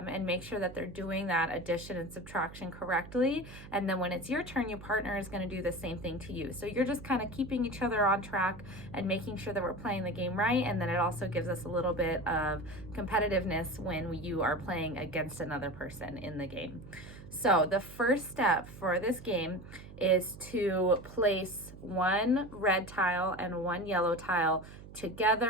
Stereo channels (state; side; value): noise; right; hum, 16 dB below the sound